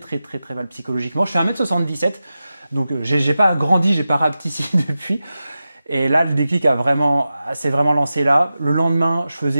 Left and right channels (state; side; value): inverted; both; correlation -0.93